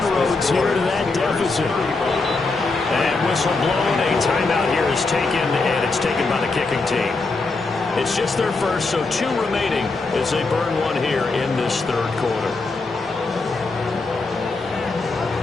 here to that deficit. And whistle blown, a timeout here is taken, and it's taken by the kicking team. It's just their first, so 2 remaining as they burn one here in this third quarter.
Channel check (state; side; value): quieter; right; 3.7 dB